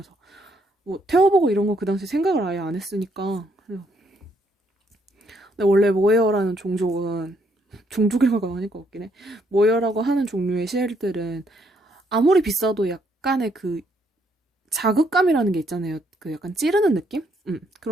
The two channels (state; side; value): normal; both; correlation 0.72